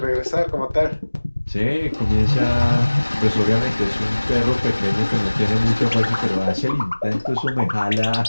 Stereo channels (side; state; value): both; inverted; correlation -1.00